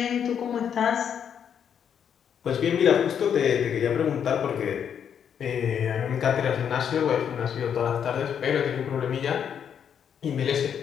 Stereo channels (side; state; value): right; quieter; 8.2 dB